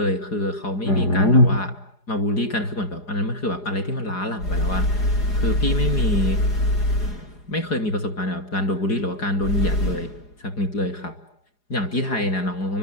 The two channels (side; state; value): right; late; 4.8 ms